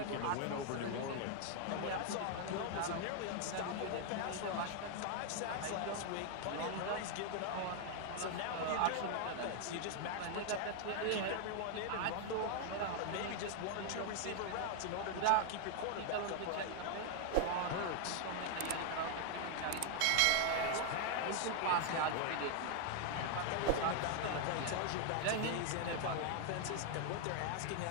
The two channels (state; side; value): different; both; correlation 0.00